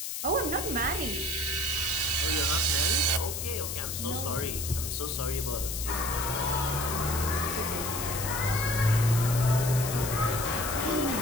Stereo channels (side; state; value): left; noise; hiss, 5 dB below the sound